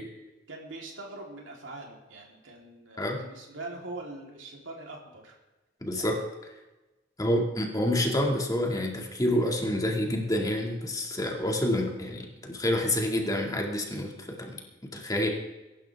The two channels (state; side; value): normal; both; correlation 0.59